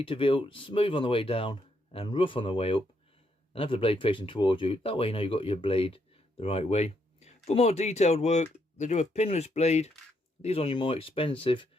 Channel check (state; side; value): normal; both; correlation 0.76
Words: to feel smooth on the way down and rough on the way up, and have the blade facing towards you. That way you know you've got your blade the right way. For more detailed work, they do a pinless blade. These are on your more expensive